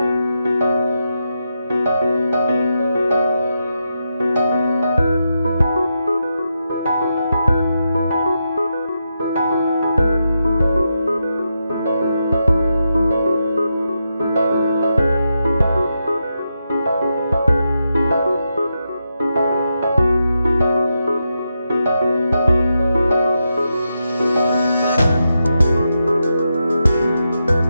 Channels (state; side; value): inverted; both; correlation -0.85